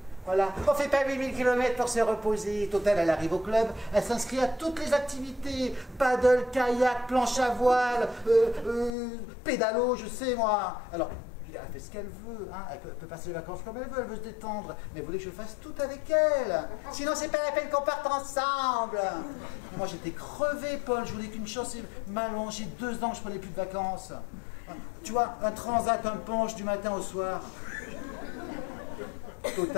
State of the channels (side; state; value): right; drops out; at 8.9 s